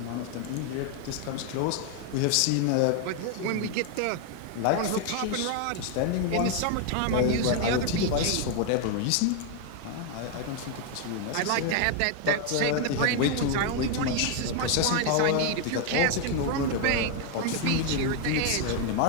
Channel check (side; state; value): both; different; correlation 0.00